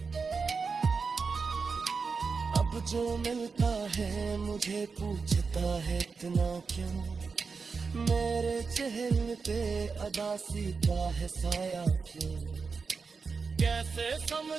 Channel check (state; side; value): quieter; left; 4.9 dB